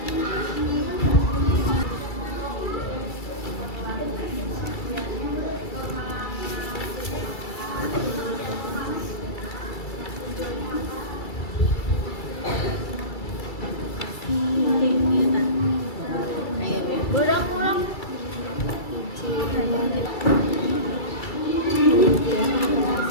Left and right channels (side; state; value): right; late; 2.3 ms